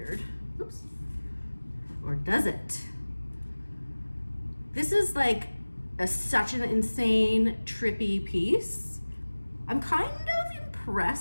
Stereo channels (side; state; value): both; inverted; correlation -1.00